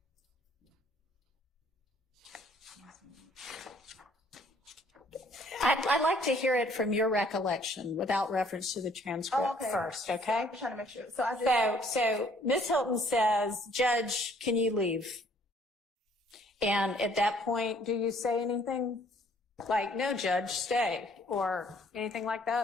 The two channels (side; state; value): both; normal; correlation 0.61